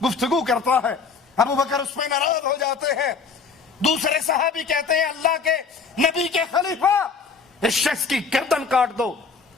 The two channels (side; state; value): right; quieter; 5.2 dB